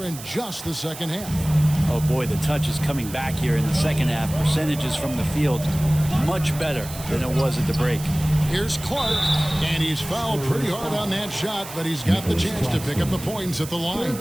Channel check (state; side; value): noise; right; hiss, 13 dB below the sound